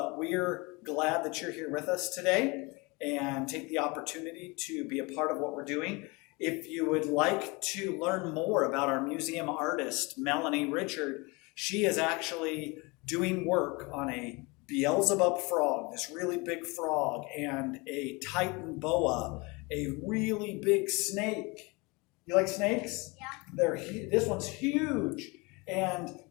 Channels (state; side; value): quieter; right; 26.6 dB